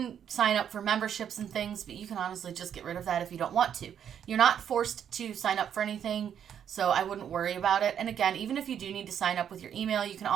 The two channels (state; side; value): quieter; left; 8.9 dB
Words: sign up for memberships and things, but you can honestly just get rid of that if you don't want to. You're not forced to sign up for anything, so I wouldn't worry about it. And again, even if you do need to sign up with your email, you can